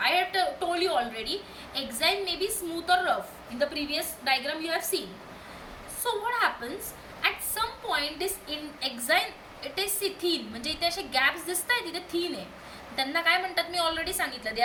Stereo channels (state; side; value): identical; both; correlation 1.00